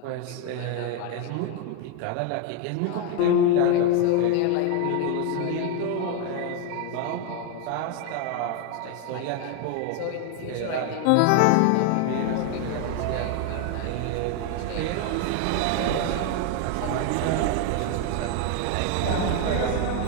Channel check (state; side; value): different; both; correlation 0.01